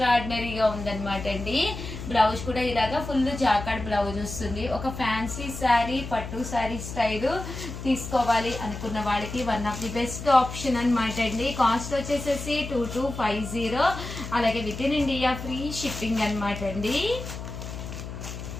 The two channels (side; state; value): left; noise; hum, 9 dB below the sound